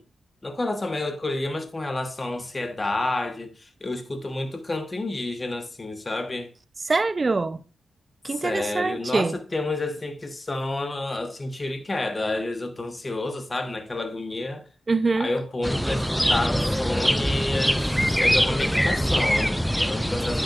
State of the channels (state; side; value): normal; both; correlation 0.95